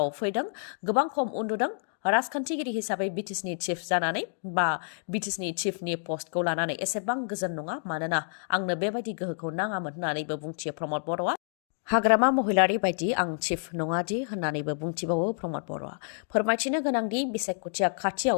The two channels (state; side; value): silent; right; digital silence